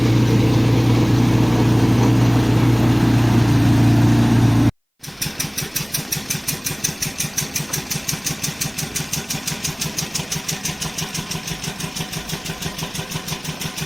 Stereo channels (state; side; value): identical; both; correlation 1.00